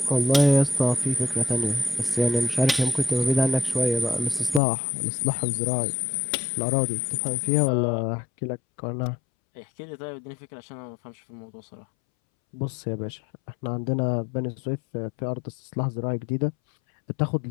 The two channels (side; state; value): right; drops out; at 4.6 s